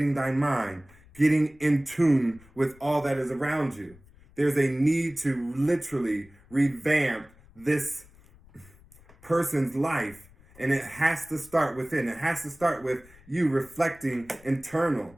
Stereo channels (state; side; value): noise; left; rumble, 25 dB below the sound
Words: thy mind, getting in tune with all that is around you. There's a need to literally revamp this person's life, and it has to start within. It has to start with you reflecting internal.